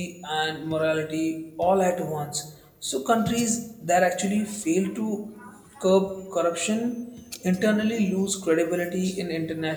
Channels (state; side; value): identical; both; correlation 1.00